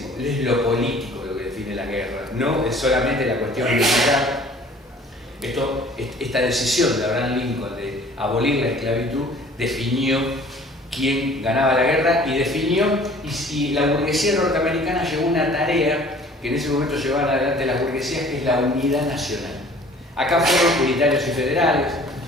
es lo político lo que define la guerra, no es solamente la cuestión militar. Esta decisión de Abraham Lincoln de abolir la esclavitud definió quién ganaba la guerra y definió, y la burguesía norteamericana llevó una tarea que en ese momento llevaban adelante las burguesías, que es la unidad nacional. Acá fueron unitarios y federales,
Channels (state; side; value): normal; both; correlation 0.51